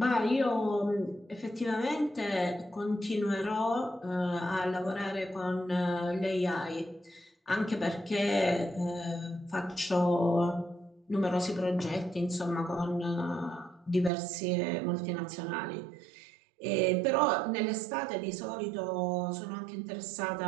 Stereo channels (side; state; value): left; drops out; at 14.1 s